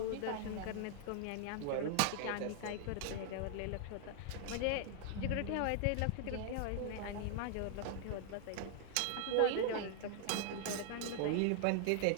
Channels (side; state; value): both; different; correlation 0.00